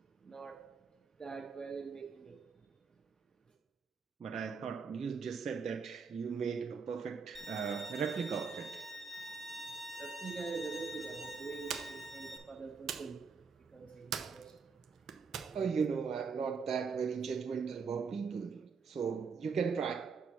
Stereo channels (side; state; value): left; quieter; 5.5 dB